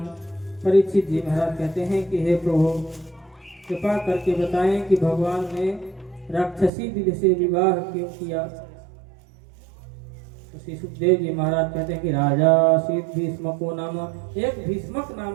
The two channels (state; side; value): drops out; left; at 6.7 s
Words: परीक्षित जी महाराज कहते हैं कि हे प्रभु कृपा करके बताएं कि भगवान ने राक्षसी विधि से विवाह क्यों किया। श्री सुखदेव जी महाराज कहते हैं कि राजा शीत भीष्मको नाम, एक भीष्मक